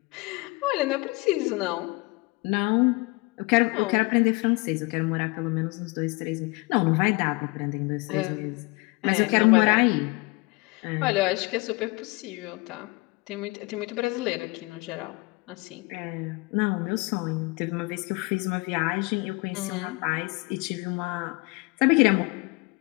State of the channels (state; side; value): quieter; right; 25.6 dB